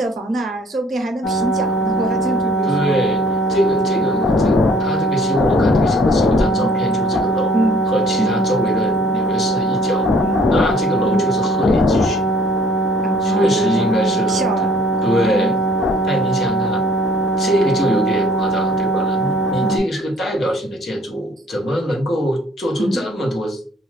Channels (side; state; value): both; normal; correlation 0.58